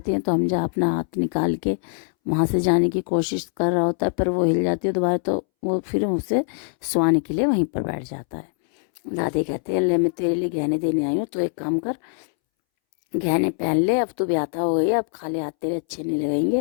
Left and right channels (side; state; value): right; silent; 63 dB below the other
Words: है तो हमजा अपना हाथ निकाल के वहाँ से जाने की कोशिश कर रहा होता है, पर वो हिल जाती है दोबारा। तो वो फिर उसे सुलाने के लिए वहीं पर बैठ जाता है। दादी कहते हैं, ले मैं तेरे लिए गहने देने आई हूँ, तो एक काम कर, गहने पहन ले, अब तू ब्याहता हो गई है, अब खाली हाथ तेरे अच्छे नहीं